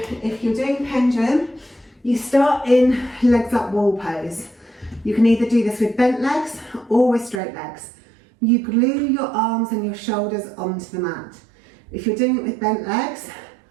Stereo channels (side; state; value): left; drops out; at 7.4 s